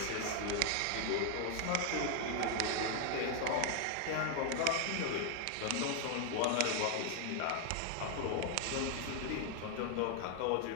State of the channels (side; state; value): both; different; correlation 0.01